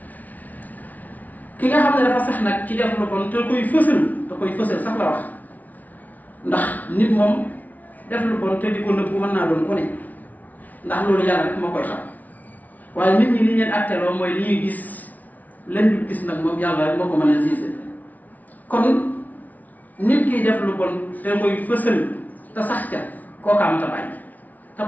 ki nga xam ne dafa sax nag ci def lu bon te koy fësal sax la wax ndax nit moom def lu bon te di ko nëbbu mën naa doon ku ne ndax loolu yàlla rek moo koy xam waaye nit ñi li leen atteloo mooy li ñuy gis leen du gis nag moom yàlla rek moo ko mën a gisé kon nit kiy def lu bon te mooy fësal te sax ca kooka mata bàyyi te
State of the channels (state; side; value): late; right; 0.076 ms